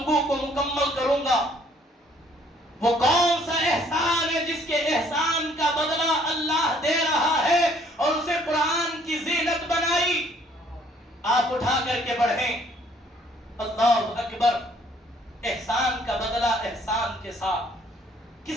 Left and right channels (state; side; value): normal; both; correlation 0.61